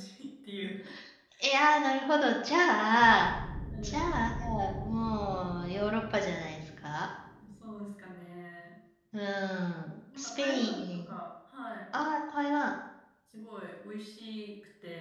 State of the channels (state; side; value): identical; both; correlation 1.00